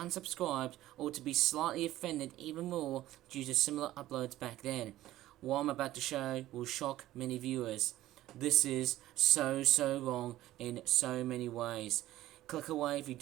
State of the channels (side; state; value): left; quieter; 14.9 dB